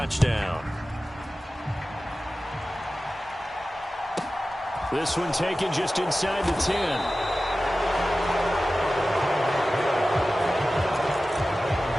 This one taken just inside the 10.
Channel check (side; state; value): both; normal; correlation 0.95